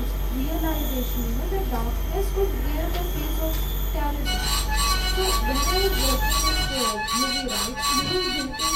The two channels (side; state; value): both; identical; correlation 1.00